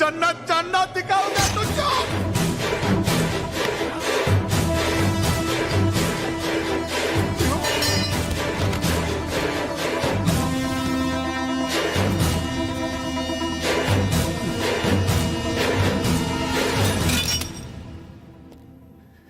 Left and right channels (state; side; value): identical; both; correlation 1.00